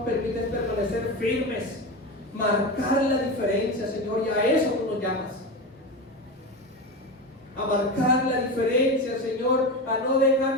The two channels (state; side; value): normal; both; correlation 0.21